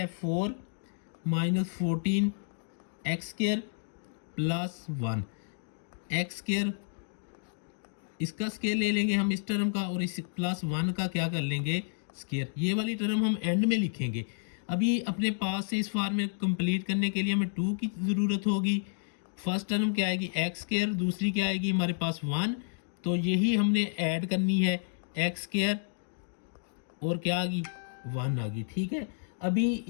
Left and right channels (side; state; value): right; silent; digital silence